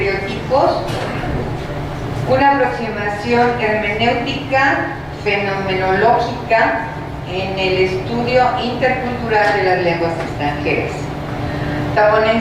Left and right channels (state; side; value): identical; both; correlation 1.00